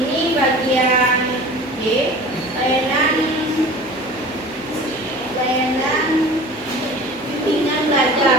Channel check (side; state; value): left; noise; hum, 24 dB below the sound